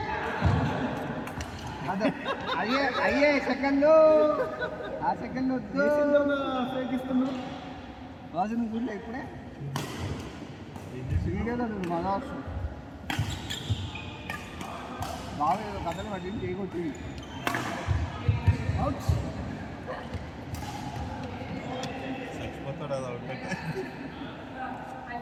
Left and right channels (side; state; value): both; identical; correlation 1.00